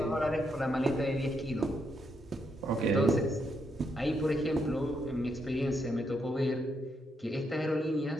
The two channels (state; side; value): normal; both; correlation 0.78